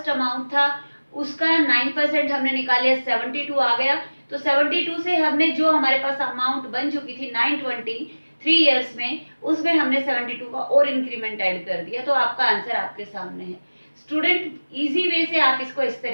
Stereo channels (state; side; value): inverted; both; correlation -1.00